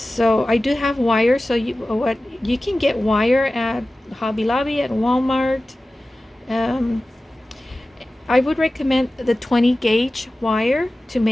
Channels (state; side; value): normal; both; correlation 0.96